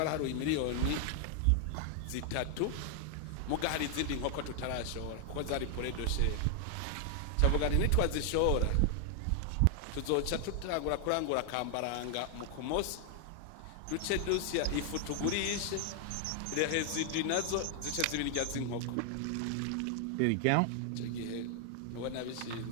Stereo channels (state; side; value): different; both; correlation 0.00